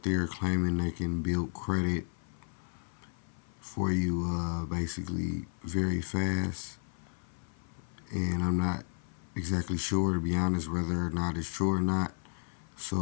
there claiming they can build credit for you basically very fast. And I'm not exactly sure, to be honest, whether or not it's true or not.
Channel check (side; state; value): right; silent; 56 dB below the other